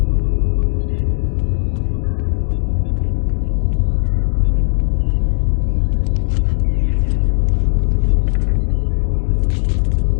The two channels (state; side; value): silent; right; digital silence